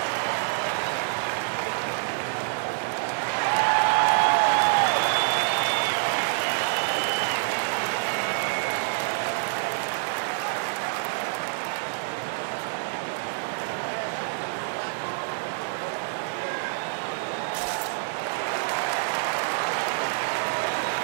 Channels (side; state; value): left; silent; digital silence